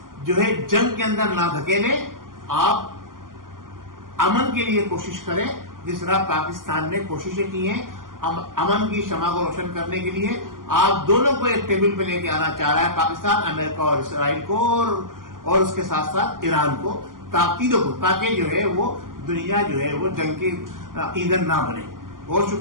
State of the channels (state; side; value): late; left; 0.91 ms